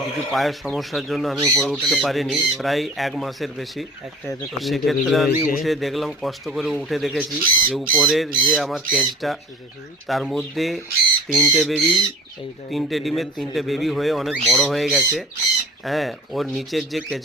কিছু পায়ের সমস্যার জন্য আমি উপরে উঠতে পারিনি প্রায় 1 মাসের বেশি। তো সেক্ষেত্রে আমি উঠে দেখলাম, কষ্ট করে উঠে দেখেছি যে উপরের যে আমার কেজটা তার মধ্যে 3টে বেবি, 3টে ডিমের 3টে বেবি হয়ে অনেক বড় হয়ে গেছে। হ্যাঁ, ওর নিচের যে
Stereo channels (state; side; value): normal; both; correlation 0.41